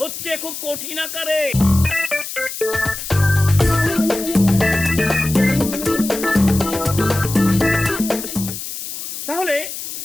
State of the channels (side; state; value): left; noise; hiss, 8 dB below the sound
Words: হচ্ছে খুব কঠিন আকারে। তাহলে